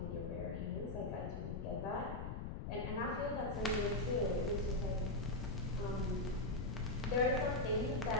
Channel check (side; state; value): left; noise; rumble, 5 dB below the sound